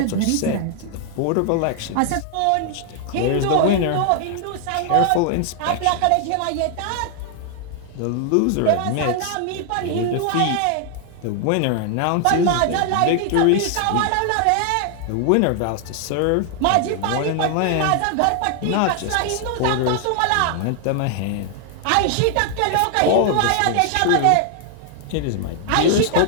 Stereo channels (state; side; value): different; both; correlation 0.00